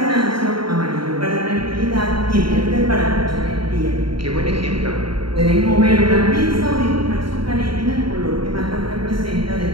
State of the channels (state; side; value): late; left; 0.73 ms